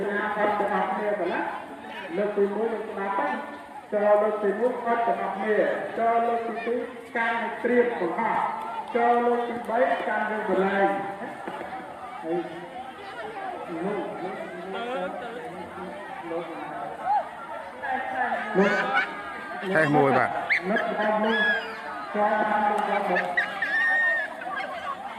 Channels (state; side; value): identical; both; correlation 1.00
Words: học từ học này phải lá lớp từ muối từ nhà bắt cho lớp từ muối bắt từ học này cho lớp từ túi can triệt của họ cho lớp từ bấy can được của lại thay mùi bạn